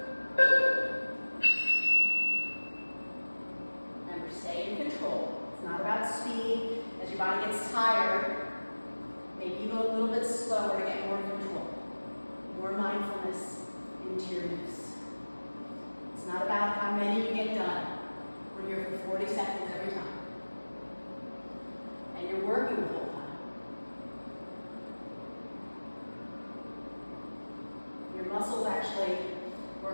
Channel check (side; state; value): both; inverted; correlation -1.00